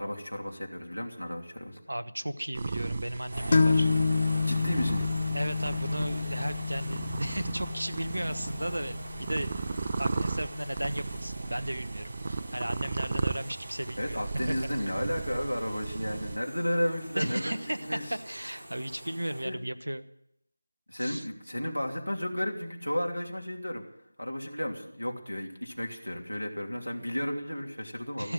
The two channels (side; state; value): both; inverted; correlation -0.95